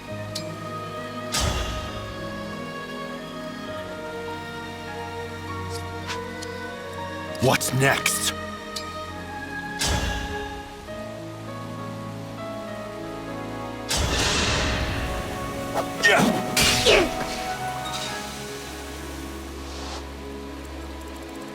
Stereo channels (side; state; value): both; identical; correlation 1.00